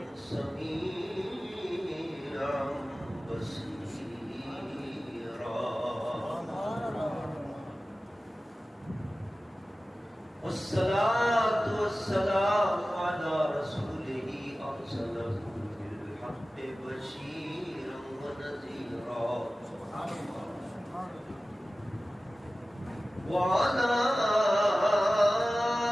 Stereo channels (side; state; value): both; normal; correlation 0.96